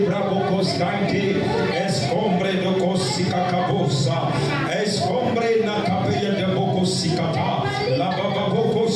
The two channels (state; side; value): identical; both; correlation 1.00